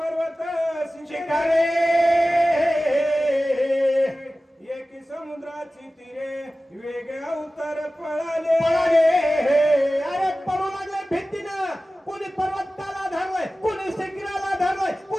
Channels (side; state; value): both; normal; correlation 0.96